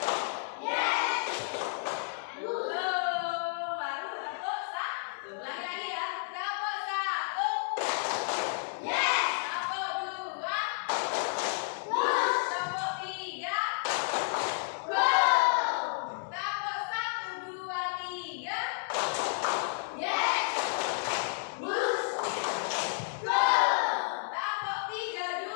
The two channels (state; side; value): silent; right; digital silence